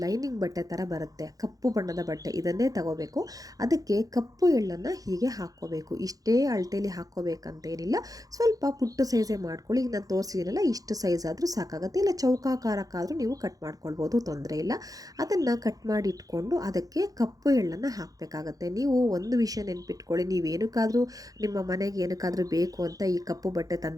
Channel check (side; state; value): left; late; 0.17 ms